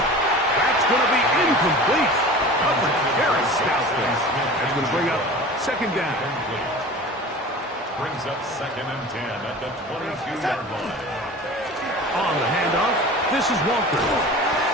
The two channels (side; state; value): both; normal; correlation 0.38